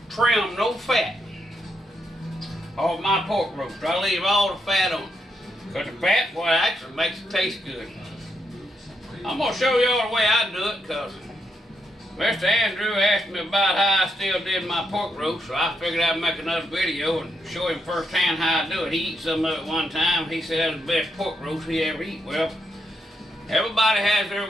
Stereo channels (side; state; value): both; normal; correlation 0.80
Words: trim no fat off my pork roast. I leave all the fat on. Because the fat, boy, actually makes it taste good. I'm going to show y'all the way I do it, because Mr. Andrew asked me about how I still did my pork roast, so I figured I'd make another video and show him firsthand how I do it. He eat some of it one time. He said that was the best pork roast he ever eat. Well, everybody has